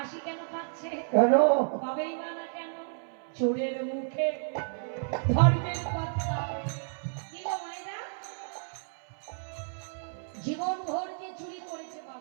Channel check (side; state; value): left; silent; 57 dB below the other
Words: কেন পাচ্ছে কেন পাবেই বা না কেন চোরের মুখে ধর্মের কথা কি গো মায়েরা জীবন ভর যে চুরি করেছে